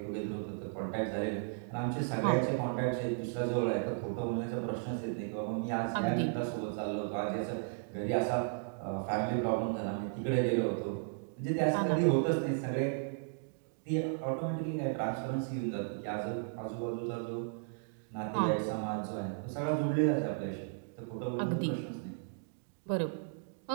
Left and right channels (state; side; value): silent; left; digital silence